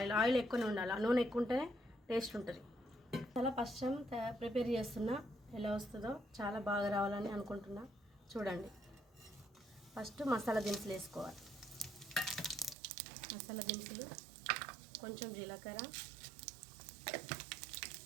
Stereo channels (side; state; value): left; drops out; at 12.8 s